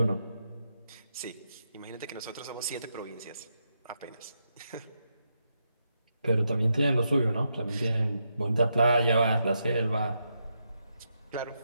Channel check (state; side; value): inverted; both; correlation -0.83